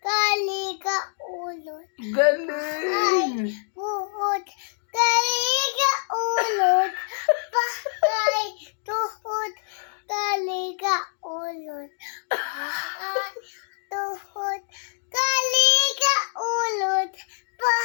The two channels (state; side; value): silent; right; 61 dB below the other